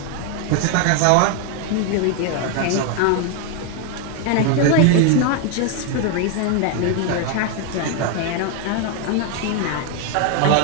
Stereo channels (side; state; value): both; different; correlation 0.01